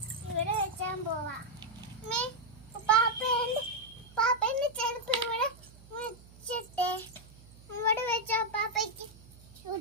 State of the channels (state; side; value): noise; right; hum, 22 dB below the sound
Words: ഇവിടെ വെച്ചാൻ പോവാ. പാപ്പന്റെ ചെരുപ്പ് ഇവിടെ വെച്ചിട്ടേ ഇവിടെ വെച്ചാ പാപ്പയ്ക്ക്